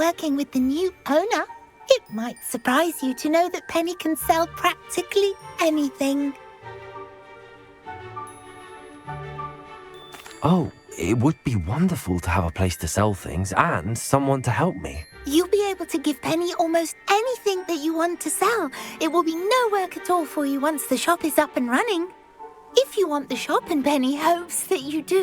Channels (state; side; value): identical; both; correlation 1.00